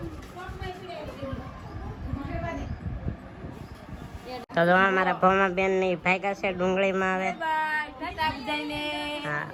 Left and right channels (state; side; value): identical; both; correlation 1.00